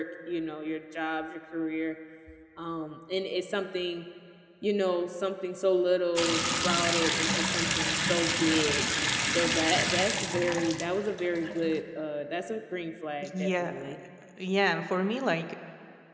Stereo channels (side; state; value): both; identical; correlation 1.00